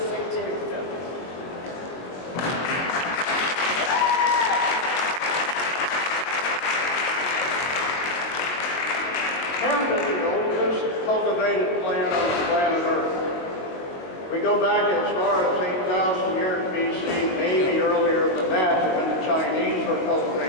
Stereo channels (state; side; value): late; right; 21 ms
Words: too. So. Hemp is the oldest cultivated plant on the planet Earth. We go back as far as 8,000 years BC, maybe earlier than that, when the Chinese were